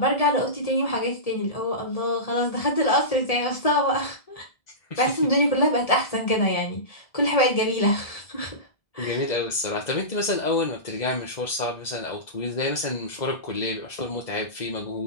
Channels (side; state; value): right; late; 1.7 ms